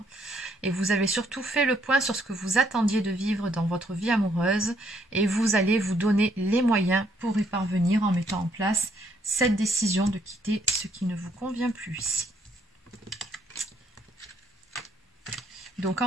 Et vous avez surtout fait le point sur ce que vous attendiez de vivre dans votre vie amoureuse. Et vous allez vous donner les moyens pour y parvenir en mettant en place cette décision de quitter ce qui ne vous convient plus ici. Donc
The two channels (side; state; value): both; normal; correlation 0.70